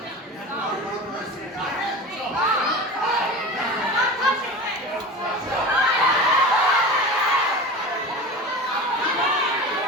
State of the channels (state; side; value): normal; both; correlation 0.31